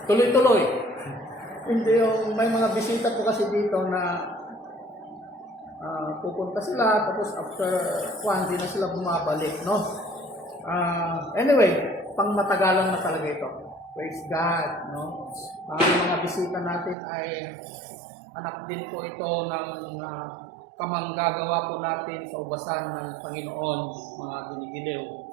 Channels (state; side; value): drops out; left; at 16.9 s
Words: tuloy-tuloy. Hindi yung may mga bisita po kasi dito na pupunta sila tapos after hindi na sila bumabalik, no? Anyway, pang matagalan na talaga ito. Praise God, no? Ang mga bisita natin ay anak din po ito ng kamanggagawa po natin sa ubasan ng Panginoon, mga ginigiliw.